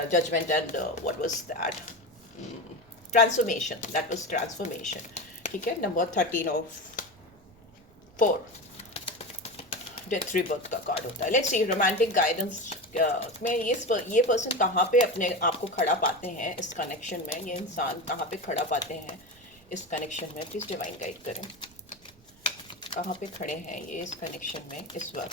judgement and what was that, transformation, that was transformation, ठीक है, नंबर 13 ऑफ 4 डेथ रीबर्थ का कार्ड होता है। लेट्स सी रोमांटिक गाइडेंस में ये पर्सन कहाँ पे अपने आप को खड़ा पाते हैं इस कनेक्शन में, ये इंसान कहाँ पे खड़ा पाते हैं इस कनेक्शन में, प्लीज डिवाइन गाइड करें, कहाँ पे खड़े हैं ये इस कनेक्शन में इस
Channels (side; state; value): right; noise; rumble, 28 dB below the sound